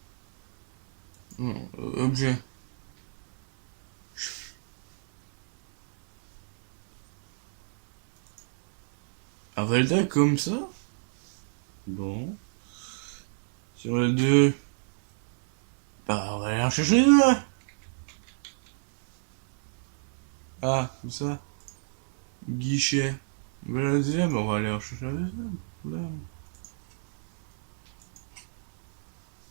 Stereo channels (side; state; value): left; silent; 60 dB below the other